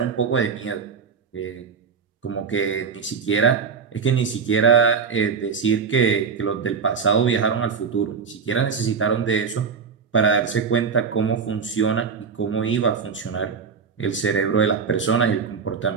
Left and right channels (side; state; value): left; quieter; 5.9 dB